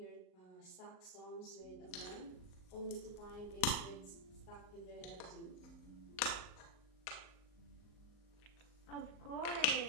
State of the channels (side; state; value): right; late; 38 ms